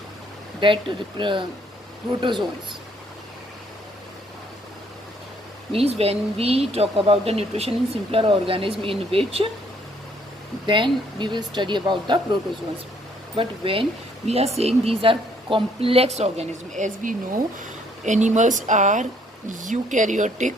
that protozoans. Means when we talk about the nutrition in simpler organism, in which then we will study about the protozoans. But when we are saying these are complex organisms, as we know, animals are eukaryotic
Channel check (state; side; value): normal; both; correlation 0.65